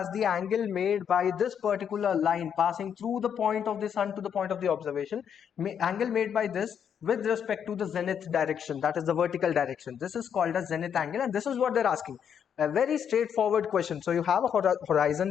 the angle made by this particular line passing through the point of the sun to the point of the observation. Angle made by this with respect to the zenith direction, that is the vertical direction. This is called as zenith angle, and this is what they're asking. A very straightforward question. So you have a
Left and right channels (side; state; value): right; quieter; 8.1 dB